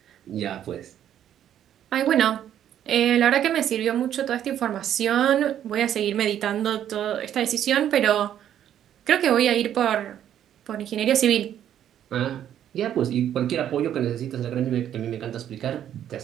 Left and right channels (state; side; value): quieter; left; 10.5 dB